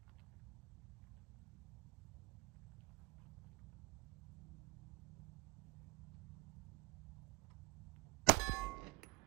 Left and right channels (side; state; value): left; quieter; 21.4 dB